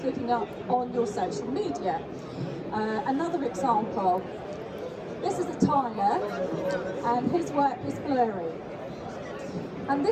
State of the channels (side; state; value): both; identical; correlation 1.00